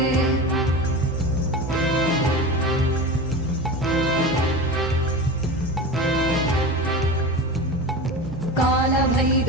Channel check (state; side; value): normal; both; correlation 0.29